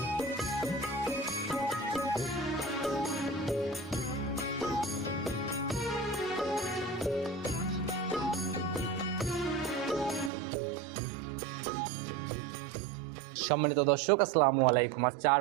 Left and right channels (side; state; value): left; drops out; at 10.3 s